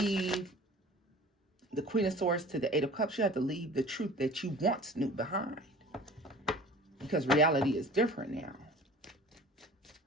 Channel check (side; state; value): both; normal; correlation 0.44